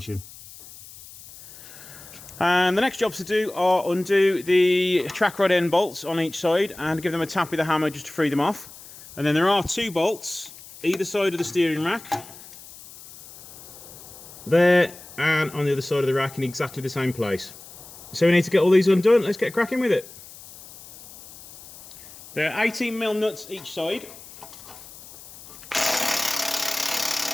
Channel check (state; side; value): noise; left; hiss, 18 dB below the sound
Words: And the next jobs to do are undo the track rod end bolts on each side and give them a tap with a hammer just to free them off. And then there are two bolts either side of the steering rack, there and on the other side of the rack in exactly the same place. So we need to get all these undone. Let's get cracking with it. There are 18mm nuts each side.